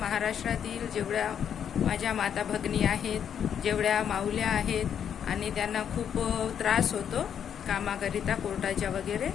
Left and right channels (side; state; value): right; quieter; 8.5 dB